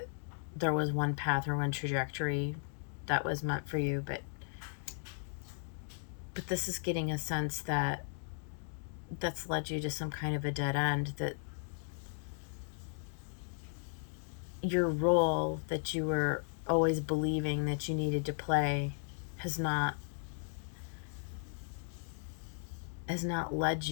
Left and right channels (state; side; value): silent; right; 54 dB below the other